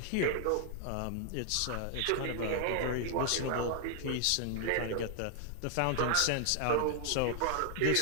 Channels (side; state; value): both; different; correlation 0.00